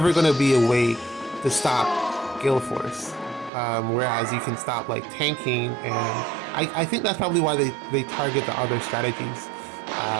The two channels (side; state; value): left; drops out; at 3.5 s